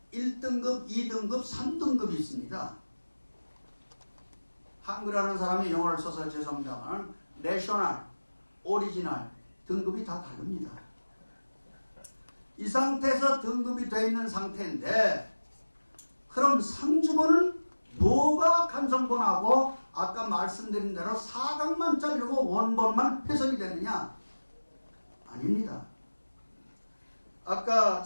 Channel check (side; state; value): both; inverted; correlation -1.00